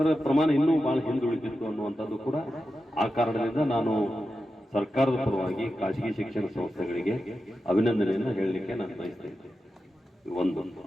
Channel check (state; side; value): normal; both; correlation 0.91